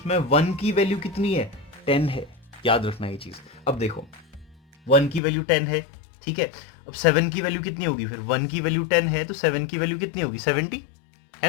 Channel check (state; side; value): drops out; right; at 5.2 s